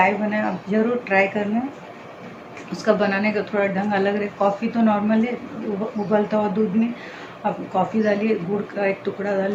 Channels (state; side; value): identical; both; correlation 1.00